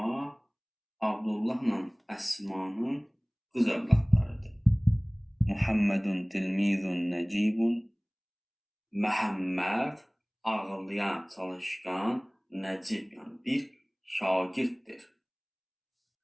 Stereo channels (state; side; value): identical; both; correlation 1.00